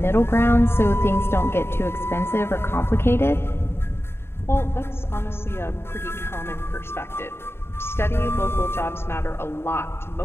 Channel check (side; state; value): right; late; 0.12 ms